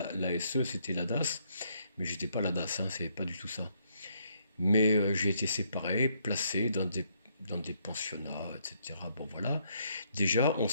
c'était la DAS. Mais j'étais pas à la DAS, hein, c'est pas du tout ça. Mais j'ai été séparé, placé dans des pensionnats, etc. Bon, voilà. Déjà, on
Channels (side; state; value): both; inverted; correlation -0.72